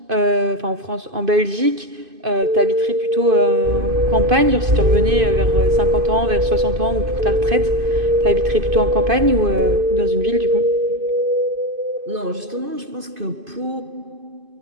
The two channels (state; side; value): late; left; 2.5 ms